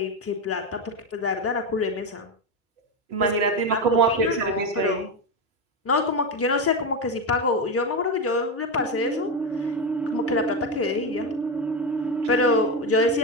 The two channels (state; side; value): normal; both; correlation 0.12